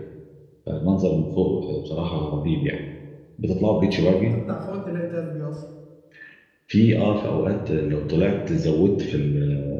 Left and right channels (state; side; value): identical; both; correlation 1.00